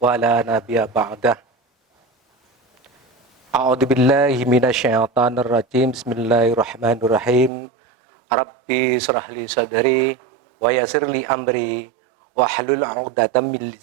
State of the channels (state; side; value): drops out; left; at 7.5 s